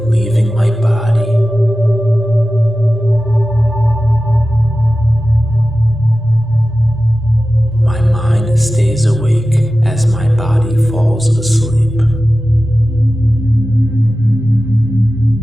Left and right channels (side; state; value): both; normal; correlation 0.95